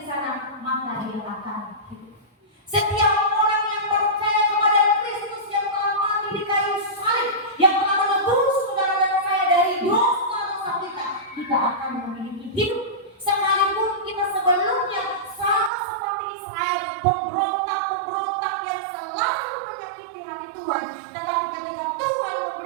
sana, maka dia akan hidup. Setiap orang yang percaya kepada Kristus yang telah mati di kayu salib, yang telah menebus saudara dan saya dari dosa-dosa kita akan memiliki hidup. Sekalipun kita sebelumnya sama seperti Israel, pemberontak yang selalu menyakiti hati Tuhan, tetapi ketika Tuhan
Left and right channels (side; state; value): left; drops out; at 15.7 s